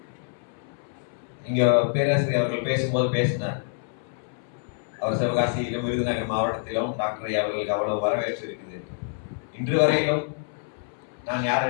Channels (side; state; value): right; silent; 61 dB below the other